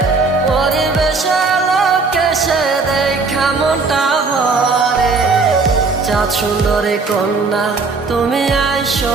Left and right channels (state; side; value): quieter; left; 4.2 dB